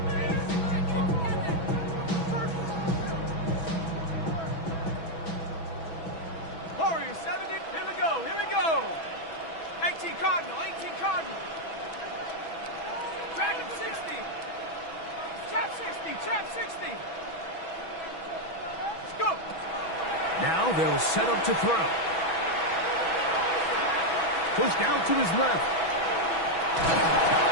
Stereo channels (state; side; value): late; right; 6.1 ms